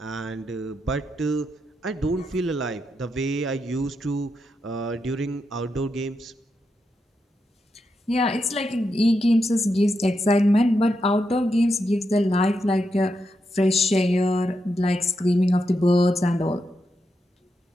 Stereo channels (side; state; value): both; normal; correlation 0.84